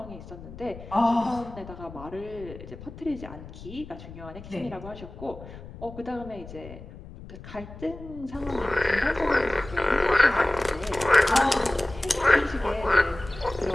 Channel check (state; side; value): noise; left; rumble, 15 dB below the sound